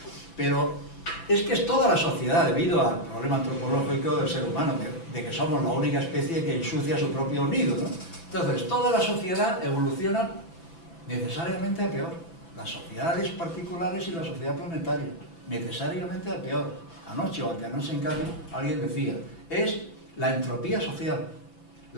Pero es que es toda la sociedad, debido al problema antropológico del ser humano, de que somos la única especie que ensucia su propio nido, ¿no? Entonces, toda la sociedad evoluciona necesariamente a peor. Las sociedades particulares y la sociedad planetaria, necesariamente a peor. Anoche o anteanoche en Cádiz alguien decía, es la entropía social.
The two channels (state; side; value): late; right; 6.0 ms